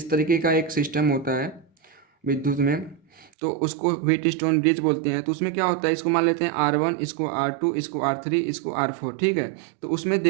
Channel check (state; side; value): drops out; left; at 3.3 s